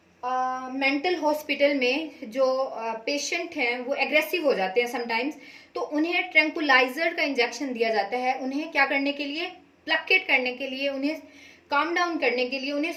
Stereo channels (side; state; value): both; identical; correlation 1.00